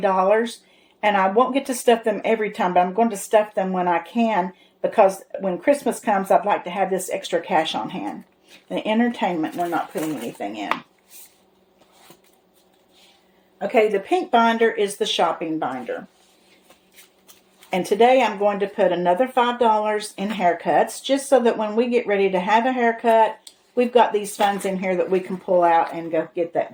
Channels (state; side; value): identical; both; correlation 1.00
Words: and I won't get to stuff them every time, but I'm going to stuff them when I can, because when Christmas comes, I'd like to have this extra cash on hand. The entertainment, we're not putting anything in. Okay, the pink binder is the shopping binder. And today I'm going to put another $5 in haircuts, just so that when we get ready to have a haircut, we've got these funds in here that we can pull out and go get that